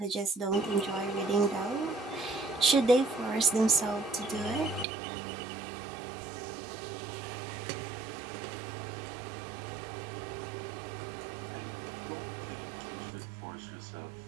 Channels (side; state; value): left; drops out; at 4.9 s